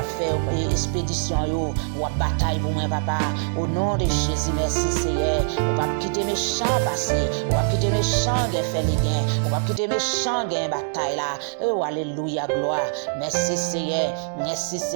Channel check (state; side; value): silent; left; digital silence